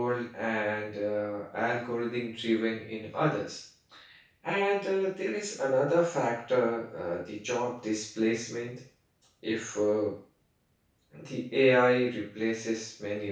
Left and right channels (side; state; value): both; identical; correlation 1.00